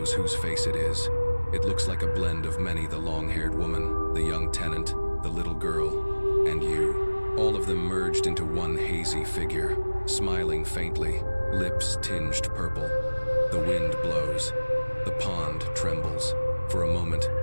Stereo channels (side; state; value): both; inverted; correlation -1.00